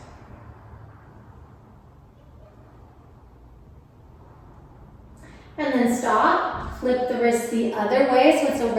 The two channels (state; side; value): identical; both; correlation 1.00